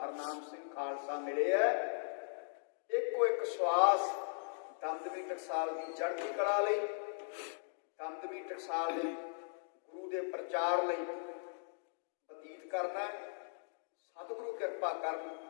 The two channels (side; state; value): right; silent; digital silence